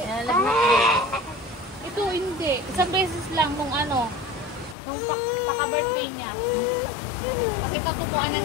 Ito hindi. Isang beses lang nung ano, nung paka-birthday niya. Kasi tatubuan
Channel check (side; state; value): right; drops out; at 4.8 s